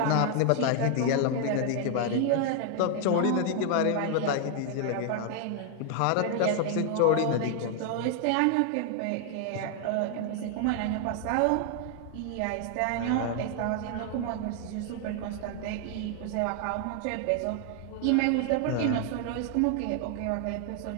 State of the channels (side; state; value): both; different; correlation 0.00